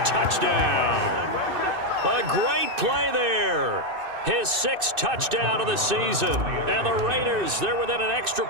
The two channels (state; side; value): late; left; 2.6 ms